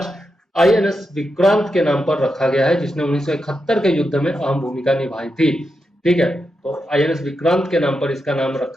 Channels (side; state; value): both; normal; correlation 0.87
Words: INS विक्रांत के नाम पर रखा गया है, जिसने 1971 के युद्ध में अहम भूमिका निभाई थी। ठीक है, तो INS विक्रांत के नाम पर इसका नाम